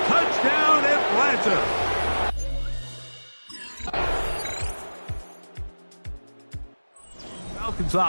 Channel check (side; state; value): both; inverted; correlation -1.00